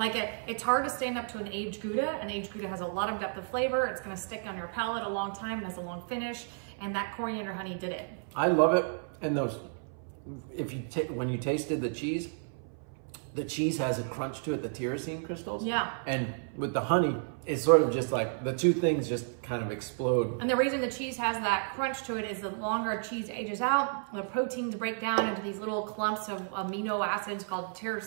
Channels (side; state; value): left; silent; 56 dB below the other